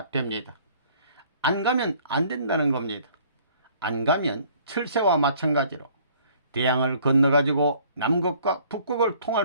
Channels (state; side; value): inverted; both; correlation -0.57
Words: 됩니다. 안 가면 안 된다는 겁니다. 안 가면 철새와 마찬가지로 대양을 건너가지고 남극과 북극을 통할